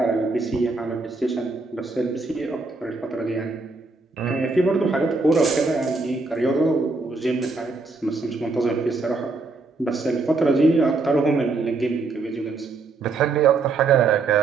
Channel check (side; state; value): left; quieter; 3.7 dB